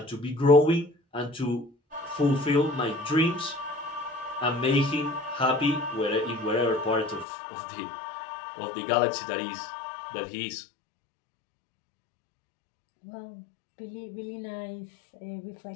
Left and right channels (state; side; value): drops out; right; at 7.2 s